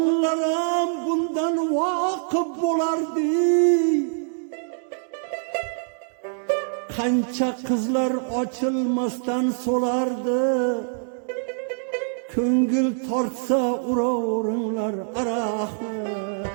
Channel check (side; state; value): left; silent; digital silence